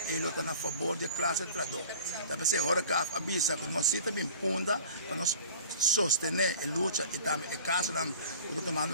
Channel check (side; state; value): both; inverted; correlation -0.43